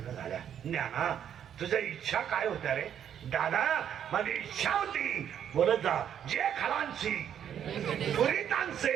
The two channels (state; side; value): quieter; left; 9.3 dB